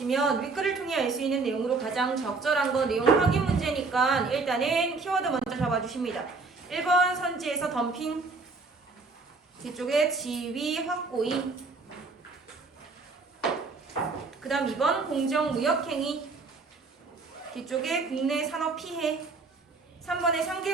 윗글을 통해 알 수 있는 내용으로 가장 적절한 거 내용 확인 문제니까 일단은 키워드 먼저 잡아주십니다. 1번 선지에서 덤핑, 뒤쪽에 지위 확고히, 그 다음 2번 공정무역행위, 뒤쪽에 국내 산업 피해, 3번에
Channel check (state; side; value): quieter; left; 4.0 dB